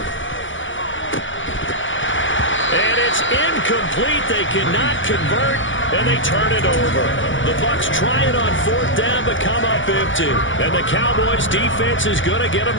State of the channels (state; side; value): late; right; 0.56 ms